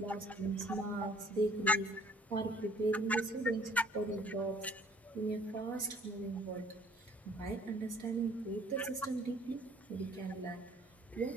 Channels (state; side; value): normal; both; correlation 0.57